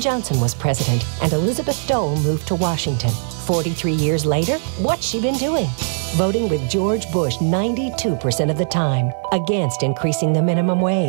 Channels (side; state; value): left; silent; digital silence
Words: was president, and Elizabeth Dole moved to Washington. 43 years later, what's she been doing? Voting with George Bush 92% of the time against increasing the minimum